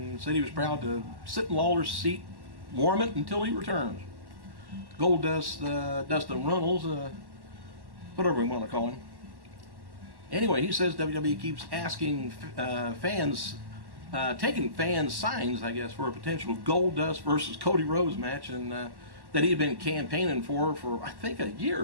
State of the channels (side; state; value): left; late; 1.1 ms